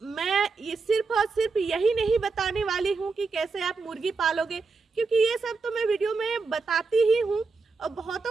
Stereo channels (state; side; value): quieter; left; 4.4 dB